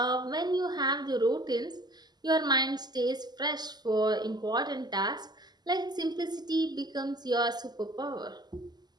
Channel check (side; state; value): left; late; 0.20 ms